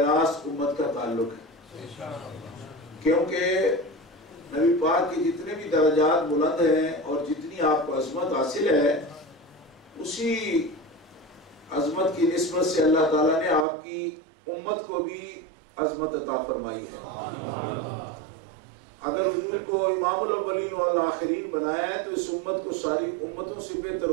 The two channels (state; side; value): drops out; left; at 13.7 s